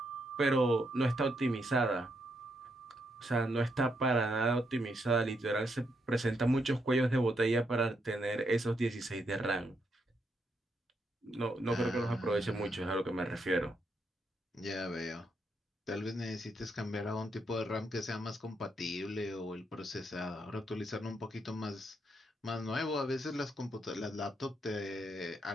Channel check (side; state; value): both; normal; correlation 0.78